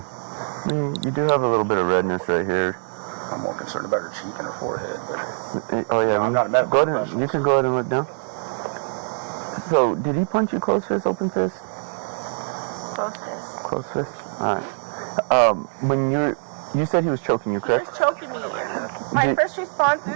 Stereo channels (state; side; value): silent; left; digital silence